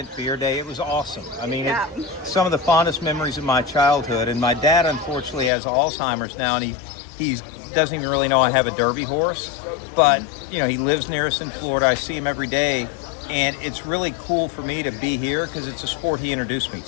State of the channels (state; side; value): drops out; right; at 5.5 s